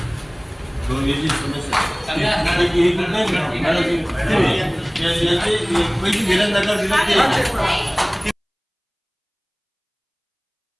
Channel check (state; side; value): identical; both; correlation 1.00